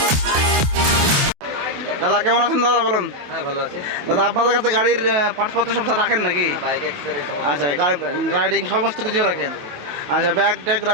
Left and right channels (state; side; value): late; left; 28 ms